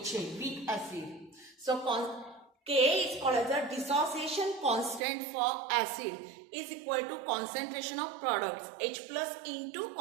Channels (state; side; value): drops out; left; at 5.0 s